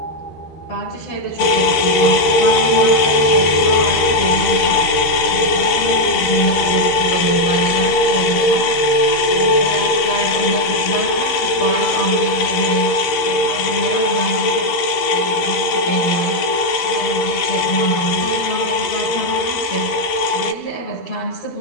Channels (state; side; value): late; right; 13 ms